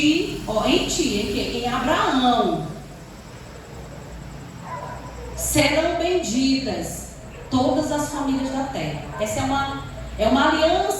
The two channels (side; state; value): both; identical; correlation 1.00